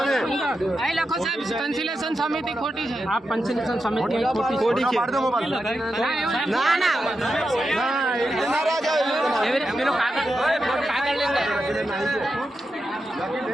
સમિતિ ખોટી છે આ પંચલેશન સમિતિ ખોટી છે ના ના પેલો કાગળ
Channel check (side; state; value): both; normal; correlation 0.88